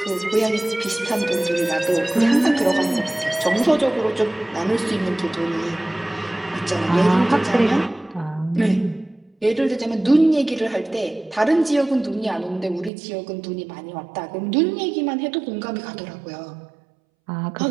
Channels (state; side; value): drops out; left; at 12.9 s